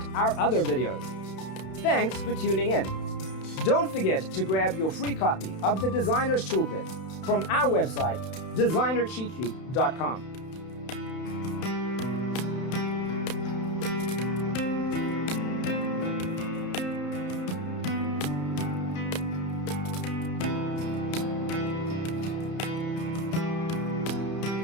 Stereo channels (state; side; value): late; right; 31 ms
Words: our other videos. Thanks for tuning in. Don't forget to grab your free copy of the Designer's Toolkit from our website, designercheatsheet.com.